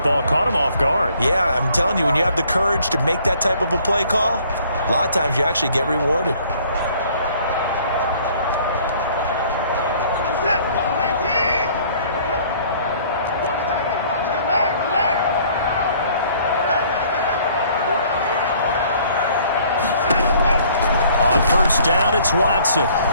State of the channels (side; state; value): both; inverted; correlation -0.58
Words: caught him off guard. Yeah, I'm telling you, when you have the courage to make that type of a play call, a lot of times you actually get rewarded. On first down, it's Watson.